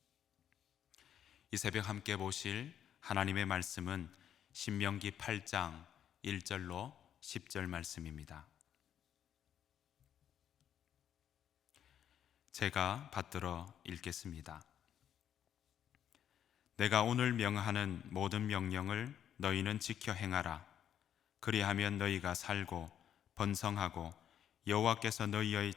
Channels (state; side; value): quieter; right; 9.8 dB